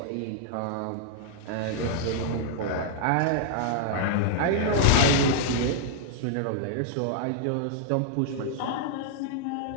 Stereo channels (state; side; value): different; both; correlation -0.01